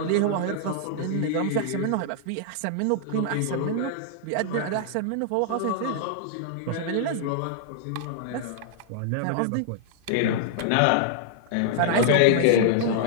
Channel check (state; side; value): different; both; correlation -0.01